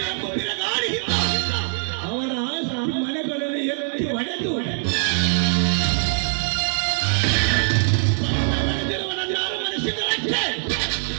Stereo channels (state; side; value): silent; left; digital silence